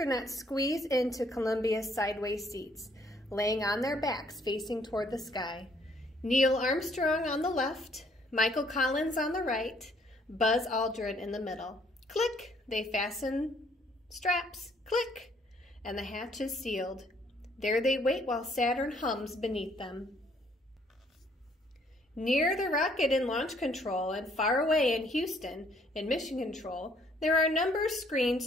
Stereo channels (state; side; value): normal; both; correlation 0.65